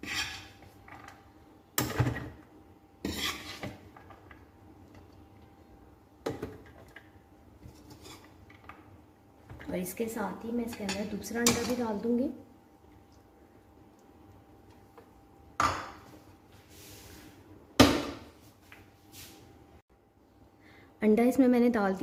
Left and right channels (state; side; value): identical; both; correlation 1.00